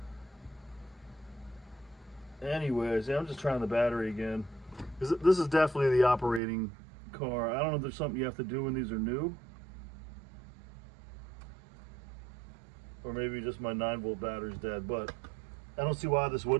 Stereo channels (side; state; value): left; drops out; at 6.4 s